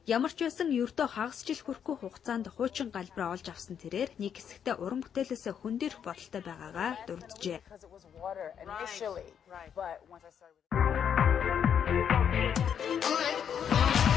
Ямар ч байсан ердөө хагас жил хүрэхгүй хугацаанд хуучин галбраа олж авсан тэрээр нэг хэсэгтээ уран бүтээлээсээ хөндөрөх бодолтой байгаагаа дурджээ.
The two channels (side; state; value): right; quieter; 8.2 dB